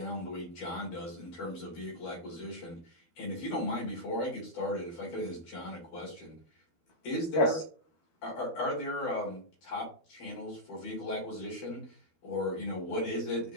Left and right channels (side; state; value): right; late; 12 ms